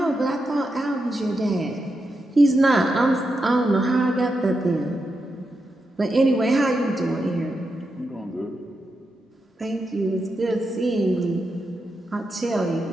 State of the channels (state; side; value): normal; both; correlation 0.86